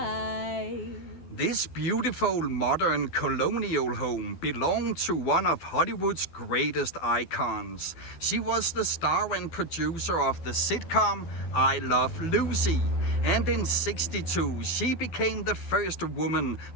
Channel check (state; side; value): late; right; 12 ms